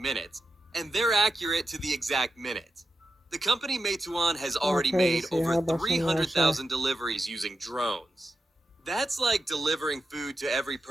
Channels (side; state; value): both; normal; correlation 0.89